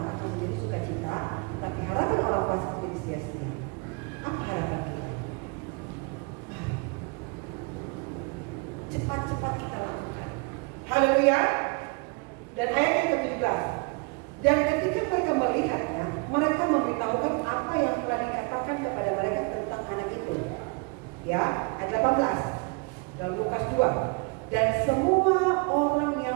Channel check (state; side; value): quieter; left; 32.1 dB